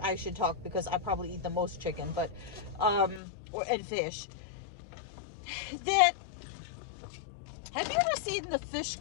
I should talk because I probably eat the most chicken, but, and fish. Have you ever seen the fish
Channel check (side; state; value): right; drops out; at 3.2 s